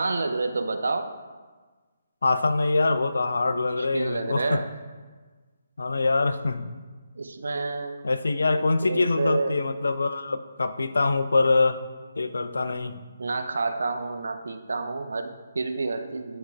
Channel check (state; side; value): inverted; both; correlation -0.92